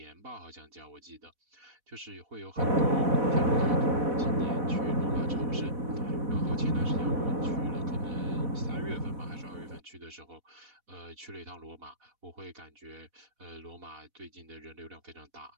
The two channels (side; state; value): left; late; 4.1 ms